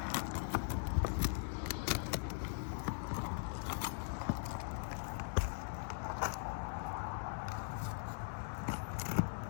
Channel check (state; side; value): silent; right; 51 dB below the other